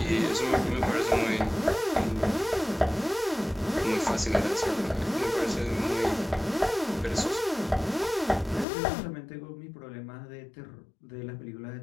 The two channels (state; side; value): drops out; right; at 8.7 s